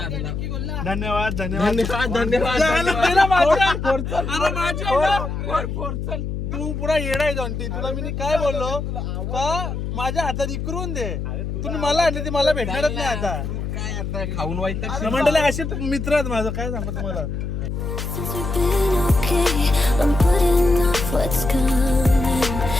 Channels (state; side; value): noise; left; hum, 4 dB below the sound